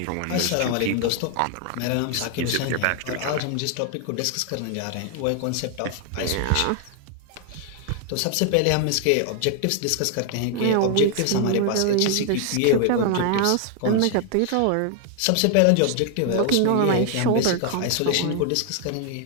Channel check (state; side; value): different; both; correlation 0.00